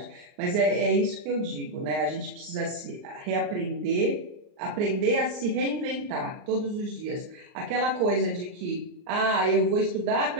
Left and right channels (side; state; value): left; late; 39 ms